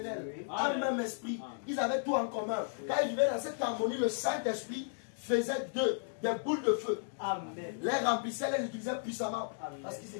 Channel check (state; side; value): silent; right; digital silence